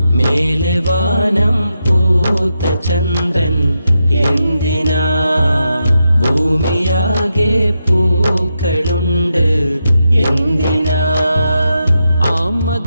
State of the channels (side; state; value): both; inverted; correlation -0.86